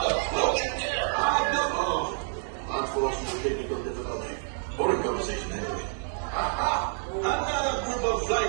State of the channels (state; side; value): silent; left; digital silence